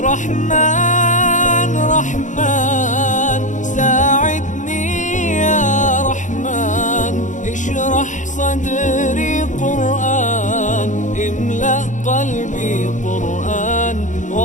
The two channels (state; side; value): late; right; 0.36 ms